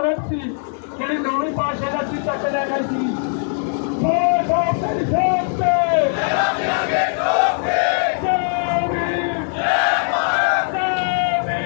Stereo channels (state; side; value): silent; right; 63 dB below the other